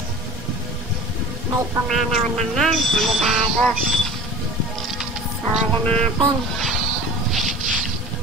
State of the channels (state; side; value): normal; both; correlation 0.35